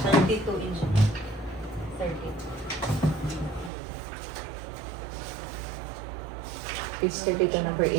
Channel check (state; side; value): drops out; left; at 3.7 s